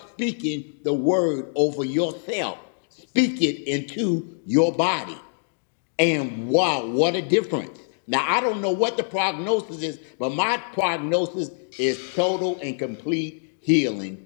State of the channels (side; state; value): right; silent; digital silence